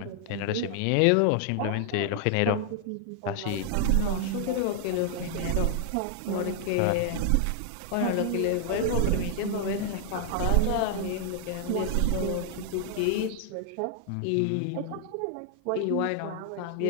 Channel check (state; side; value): different; both; correlation 0.00